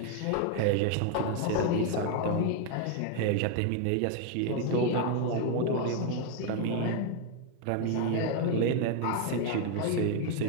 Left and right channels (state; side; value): different; both; correlation 0.00